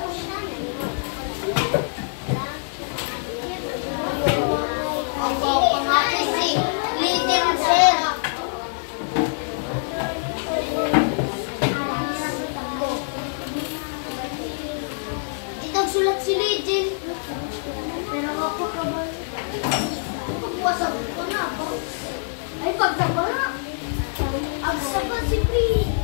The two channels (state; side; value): silent; right; digital silence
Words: Sulat si Legend. Pero ako ka ba? Pagpuwasap ko na ako. Ay, pagsaba na. Agsaba si Pri.